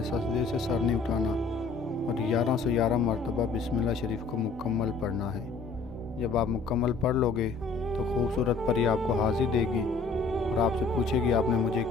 सजदे से सर नहीं उठाना और 1111 मरतबा बिस्मिल्लाह शरीफ को मुकम्मल पढ़ना है। जब आप मुकम्मल पढ़ लोगे तो खूबसूरत परी आपको हाज़िर देगी और आपसे पूछेगी आपने मुझे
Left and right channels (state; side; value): quieter; right; 4.4 dB